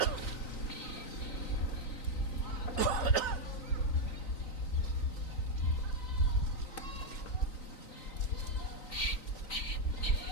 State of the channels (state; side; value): late; right; 3.9 ms